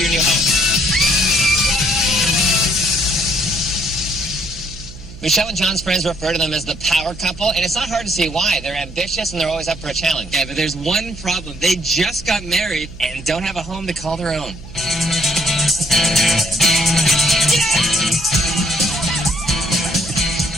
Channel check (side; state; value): right; noise; hum, 16 dB below the sound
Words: your new home. Michelle and John's friends refer to them as the power couple, and it's not hard to see why. They're ambitious and they're always up for a challenge. Yeah, but there's one problem. They just got married and don't have a home to call their own.